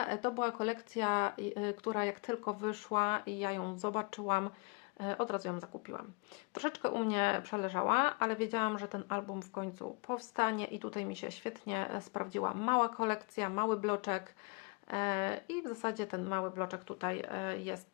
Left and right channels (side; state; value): right; quieter; 30.7 dB